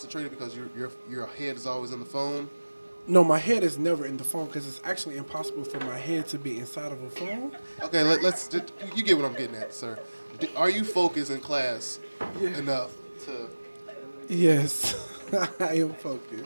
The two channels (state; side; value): inverted; both; correlation -1.00